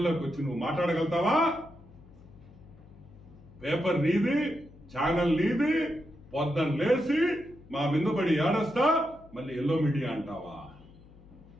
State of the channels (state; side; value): noise; left; hum, 23 dB below the sound